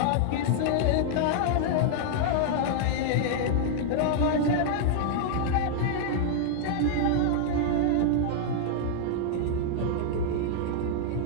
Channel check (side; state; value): both; different; correlation -0.01